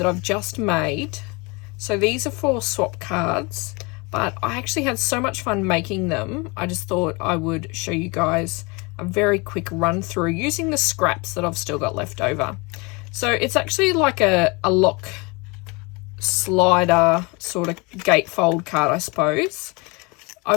I've just made. So these are 4 swap cards, but I actually had so much fun making them. I just thought I would show you guys a very quick run through using the scraps that I've still got left over. So it's actually like a lock slider sort of gatefold card, I suppose.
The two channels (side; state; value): right; quieter; 27.9 dB